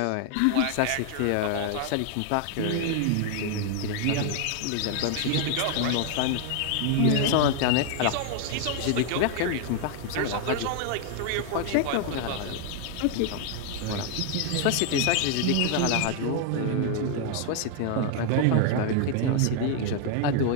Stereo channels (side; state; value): both; different; correlation 0.00